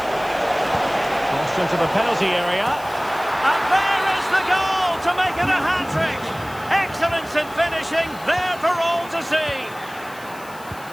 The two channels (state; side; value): noise; left; hiss, 21 dB below the sound